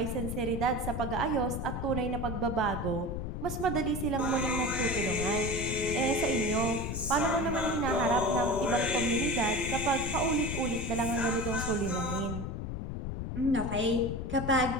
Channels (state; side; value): noise; left; rumble, 4 dB below the sound